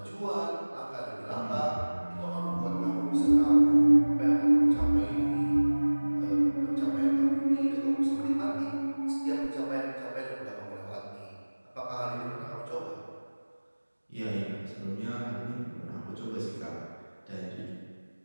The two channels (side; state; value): both; inverted; correlation -1.00